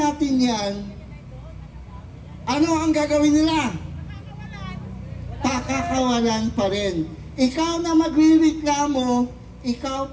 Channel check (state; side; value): identical; both; correlation 1.00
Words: yan, ano ang gagawin nila? Pakakawalan pa rin. Ikaw na magrereklamo, ikaw